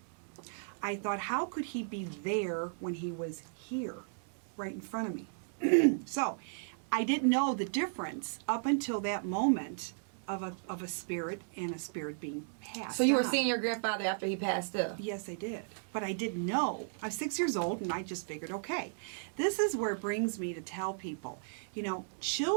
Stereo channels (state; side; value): silent; left; 54 dB below the other